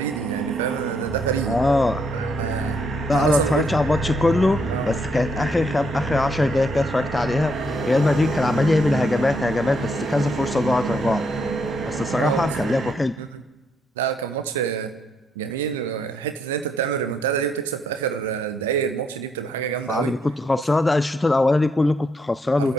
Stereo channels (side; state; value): both; normal; correlation 0.75